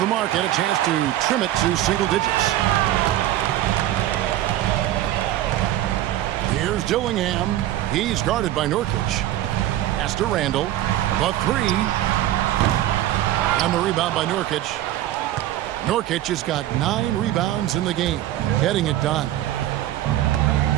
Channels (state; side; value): quieter; left; 13.7 dB